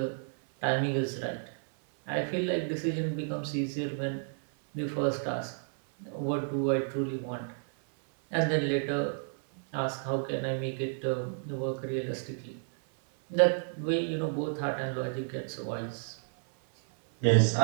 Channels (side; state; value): left; silent; 57 dB below the other